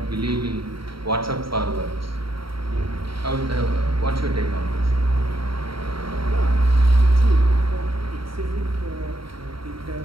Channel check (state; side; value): late; left; 0.74 ms